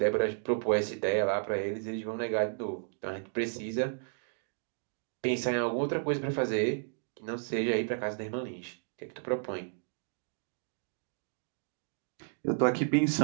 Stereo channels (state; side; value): silent; left; digital silence